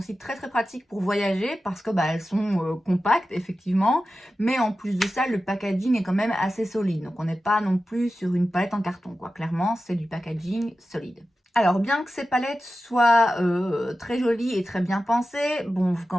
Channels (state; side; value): normal; both; correlation 0.93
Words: très pratiques pour voyager parce que bah, elles sont compactes, effectivement, mais en plus de ça, le packaging est quand même assez solide. Donc on n'est pas non plus sur une palette en carton, quoi. Clairement, c'est du packaging solide. Alors, bien que ces palettes soient très jolies et très bien pensées, bon, vous ne